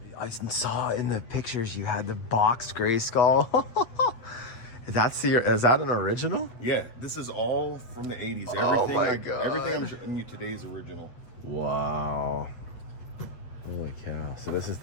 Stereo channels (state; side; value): late; right; 8.5 ms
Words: I saw in the pictures you had the boxed gray skull. Is that an original? Yeah, this is all from the 80s. Oh my God. Everything I'm showing you today is original. Wow. Holy cow. So this is